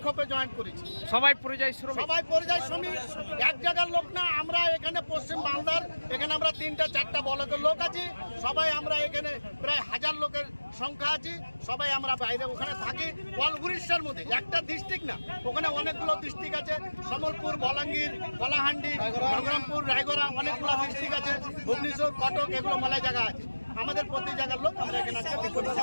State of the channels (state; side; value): inverted; both; correlation -1.00